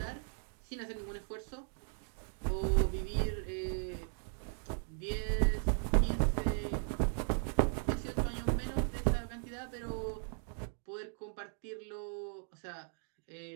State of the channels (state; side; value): silent; left; 53 dB below the other